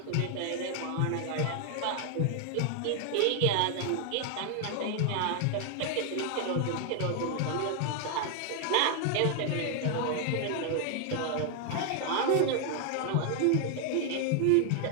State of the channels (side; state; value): both; different; correlation 0.00